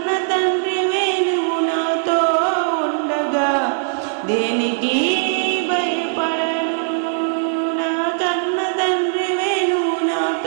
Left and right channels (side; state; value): left; silent; digital silence